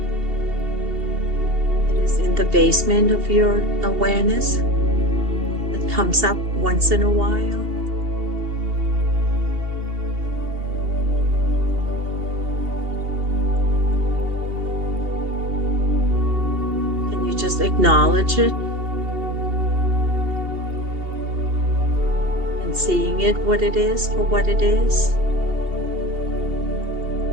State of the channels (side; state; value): left; late; 2.8 ms